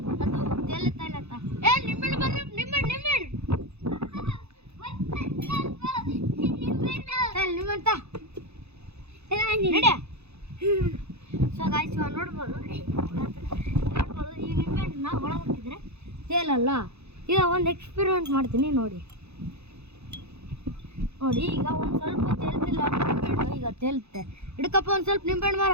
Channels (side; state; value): left; late; 0.80 ms